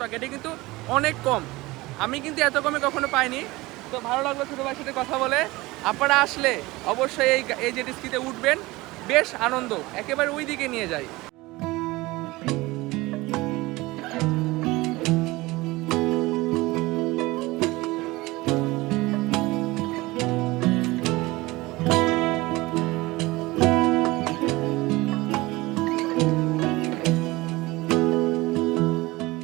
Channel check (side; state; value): left; quieter; 20.9 dB